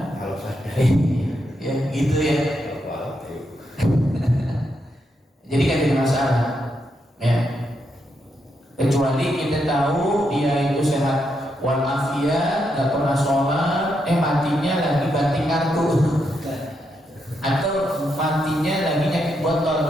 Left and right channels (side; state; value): both; normal; correlation 0.81